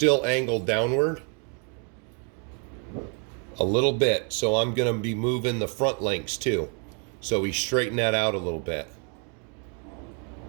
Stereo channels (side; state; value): left; quieter; 38.4 dB